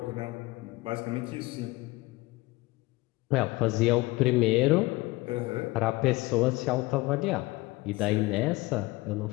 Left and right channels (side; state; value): right; quieter; 21.4 dB